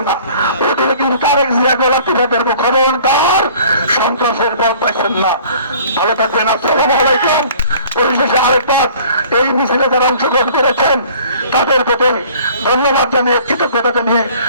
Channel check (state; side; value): inverted; both; correlation -0.51